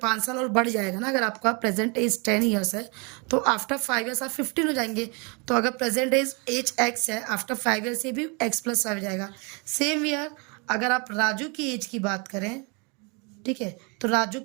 5 साल और बढ़ जाएगा ना. अगर आपका प्रेजेंट एज 10 years है तो आफ्टर 5 years आप 15 हो जाएंगे. तो अगर प्रेजेंट एज एक्स है आफ्टर 5 years ये भी एक्स प्लस 5 हो जाएगा. सेम ईयर अगर आप राजू की एज की बात करें, ठीक है, तो राजू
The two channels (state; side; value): quieter; left; 31.7 dB